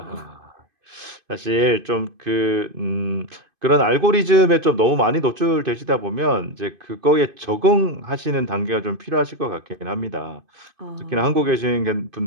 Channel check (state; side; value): late; left; 2.5 ms